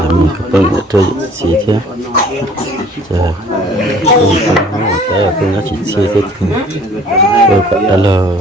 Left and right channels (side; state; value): both; normal; correlation 0.52